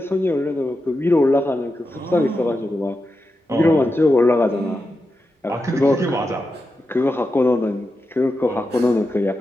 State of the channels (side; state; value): both; normal; correlation 0.89